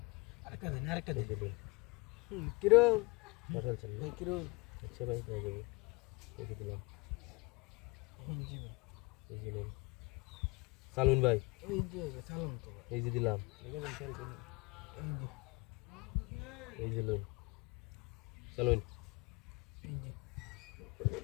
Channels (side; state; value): right; quieter; 26.2 dB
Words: আরেকটা দিন আরেকটা এই দিন যে নেন কিরো পাঠালছেন না ভাই কিরো আচ্ছা ভাই হয়ে যাবে এই যে দিলাম এই যে ভাই এই যে নেন সালুন ভাই এই যে সালাম তো ভাই এই যে দিলাম এই যে এই যে লোন সালুন এই যে